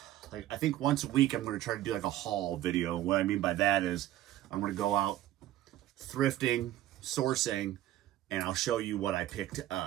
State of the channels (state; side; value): quieter; left; 13.9 dB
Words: like, I think once a week I'm going to try to do like a haul video. What I mean by that is I'm going to go out thrifting, sourcing, and I'll show you what I picked